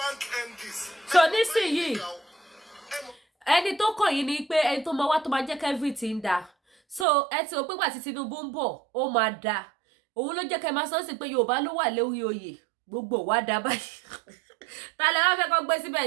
MDs. So nísìnyìí ẹni tó kàn yín ni pé ẹni tó máa wá tó máa jẹ́ kí everything dà so ẹ ti rò pé gbà tí Tinubu ń bọ̀ ó máa dà òun ló jẹ́ kẹ́ máa sọ sí pé Yorùbá ló wà lórí oyè gbogbo wa dà báyìí ta lẹ wá fẹ́ kó gbé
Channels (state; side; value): drops out; left; at 7.1 s